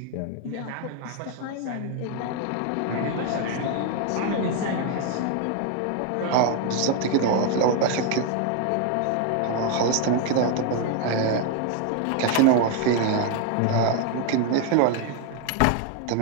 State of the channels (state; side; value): different; both; correlation 0.01